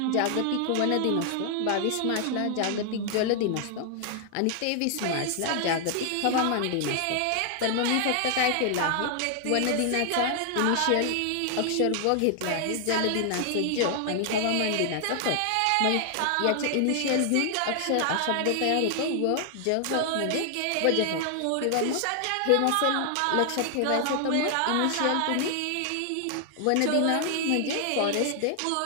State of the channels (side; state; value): both; different; correlation 0.00